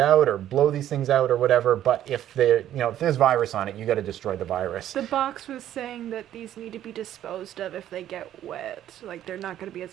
or blow these things out or whatever, but if there's virus on it, you got to destroy the virus. The box was saying that these need to be disposed of if they get wet, like they're not going to be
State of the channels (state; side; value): quieter; left; 11.8 dB